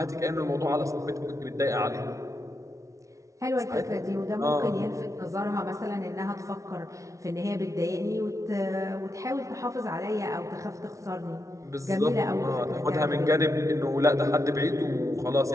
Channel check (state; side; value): late; left; 0.15 ms